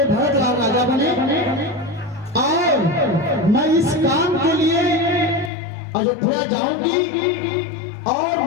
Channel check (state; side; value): drops out; right; at 5.5 s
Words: भरत राम राजा बने, और मैं इस काम के लिए अयोध्या जाऊंगी और